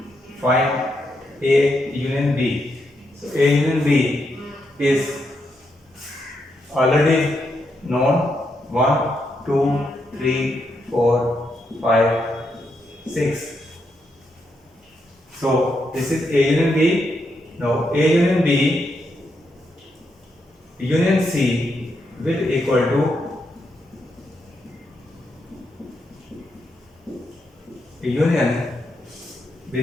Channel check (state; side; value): normal; both; correlation 0.81